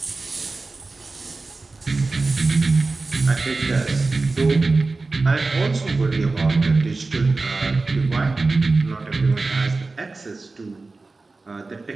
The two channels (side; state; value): left; quieter; 3.6 dB